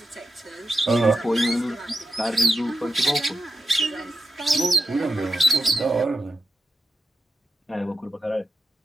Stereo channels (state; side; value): normal; both; correlation 0.89